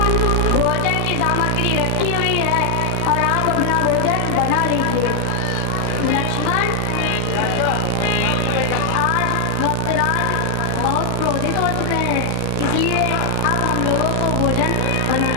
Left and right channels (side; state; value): both; different; correlation 0.00